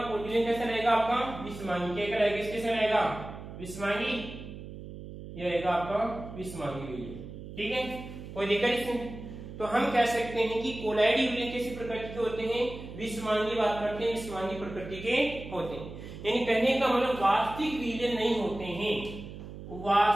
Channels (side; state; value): right; noise; hum, 12 dB below the sound